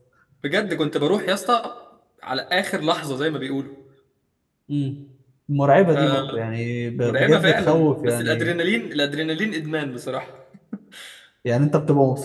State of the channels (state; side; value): identical; both; correlation 1.00